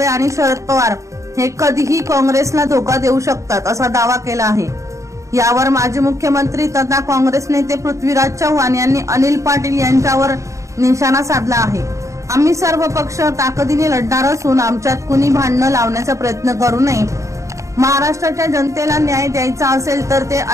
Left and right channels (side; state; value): left; late; 0.15 ms